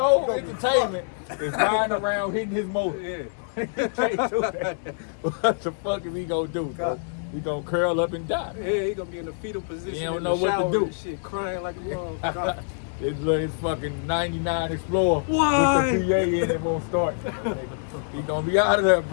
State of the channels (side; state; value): right; silent; 61 dB below the other